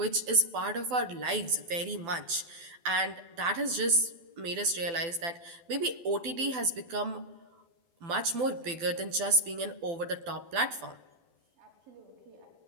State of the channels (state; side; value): late; left; 12 ms